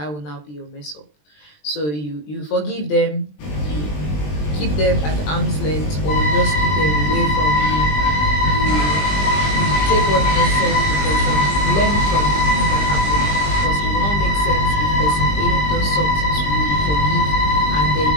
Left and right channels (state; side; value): late; right; 20 ms